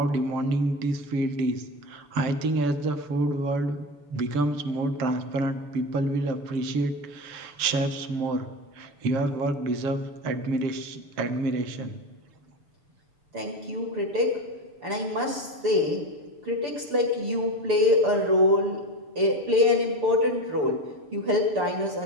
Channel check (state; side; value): late; left; 6.9 ms